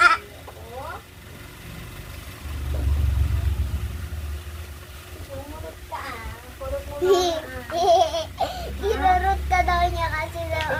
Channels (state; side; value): identical; both; correlation 1.00